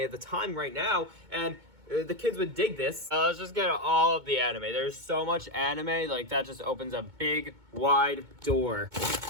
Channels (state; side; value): late; left; 2.2 ms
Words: the time right now. And the kids would dig this. Let's just get all of the anime. There's so much anime, like that just opens a big, wide door.